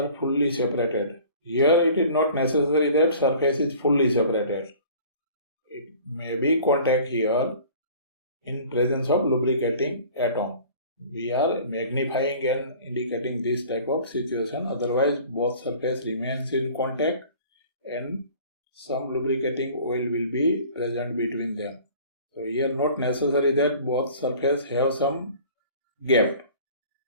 fully separated. Here it is not necessary that surface is fully separated. It may be contact here in presence of lubricating atom. We are magnifying and indicating this type of situation. Otherwise, both surface remains in contact and some lubricating oil will be present between them. So here not necessary that both surface have some gap.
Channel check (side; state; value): both; inverted; correlation -0.47